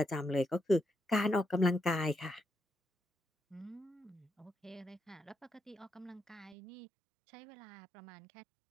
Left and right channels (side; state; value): left; drops out; at 6.6 s